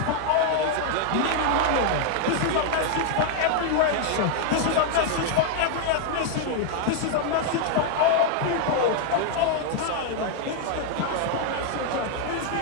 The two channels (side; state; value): both; different; correlation 0.00